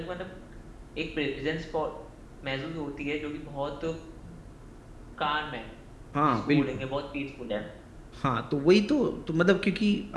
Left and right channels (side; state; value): both; identical; correlation 1.00